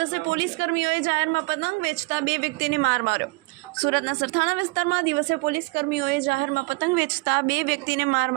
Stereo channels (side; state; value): left; quieter; 26.6 dB